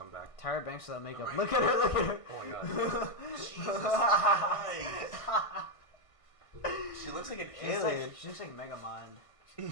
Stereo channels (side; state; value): right; late; 1.5 ms